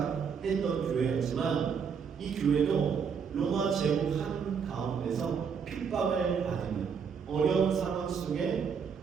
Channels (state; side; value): quieter; left; 6.5 dB